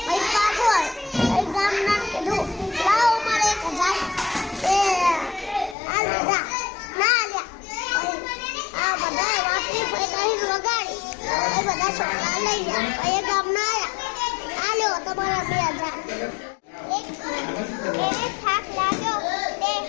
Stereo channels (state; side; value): drops out; right; at 5.8 s